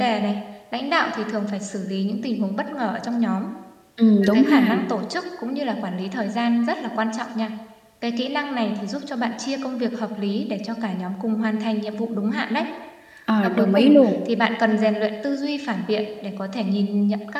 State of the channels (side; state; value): both; identical; correlation 1.00